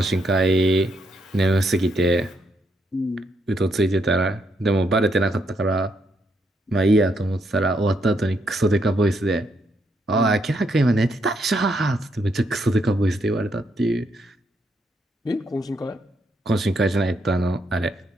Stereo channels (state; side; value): normal; both; correlation 0.77